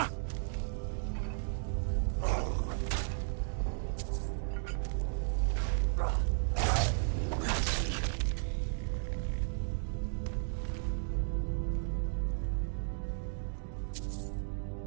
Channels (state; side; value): silent; left; digital silence